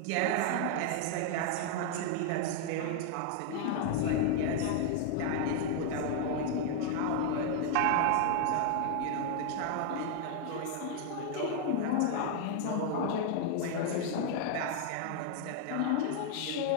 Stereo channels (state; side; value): different; both; correlation 0.00